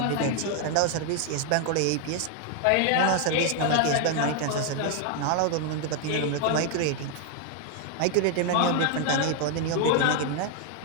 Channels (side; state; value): both; different; correlation 0.00